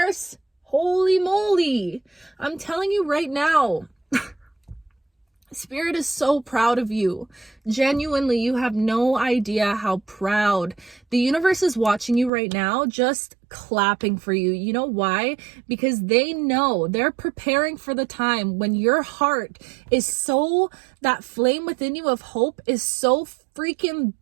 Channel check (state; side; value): drops out; left; at 12.3 s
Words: Holy moly. I'm telling you right now. Spirit is so proud of you. Genuinely, you have no idea how proud. The universe is watching you right now, just clapping for you. You know why? Because they know, they're preparing for the time when your heart is so, that flame within you of hope is so freaking